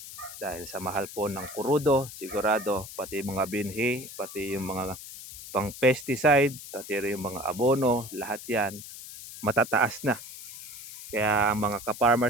Dahil sa mahal po ng kurudo, sigurado, pati mga binhi, pati yung mga pang pesticide, pati rin yung mga abono, lahat yan matataas na. Kaya ang mga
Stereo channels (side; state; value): left; noise; hiss, 13 dB below the sound